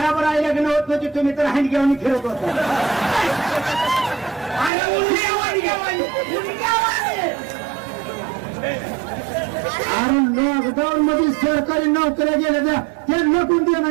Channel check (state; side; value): drops out; left; at 4.7 s